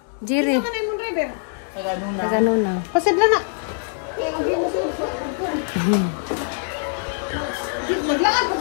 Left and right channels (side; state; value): right; silent; digital silence